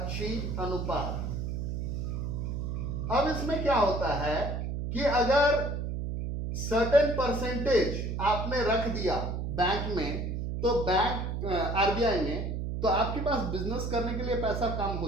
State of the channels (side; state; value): right; noise; hum, 3 dB below the sound